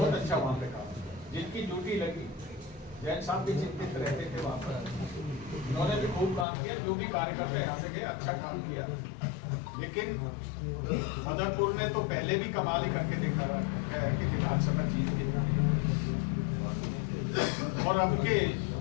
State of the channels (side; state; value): right; drops out; at 6.5 s